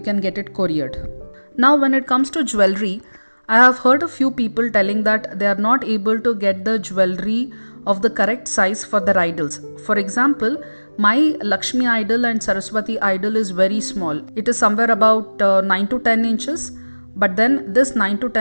get it couriered. Now when it comes to jewelry, I have heard a few people telling that they are not able to get the jewelry of the correct size for their idols. For example, my Lakshmi idol and Saraswati idol is very small. It is somewhere about 9 to 10 inches. But then this 9 to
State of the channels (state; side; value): inverted; both; correlation -1.00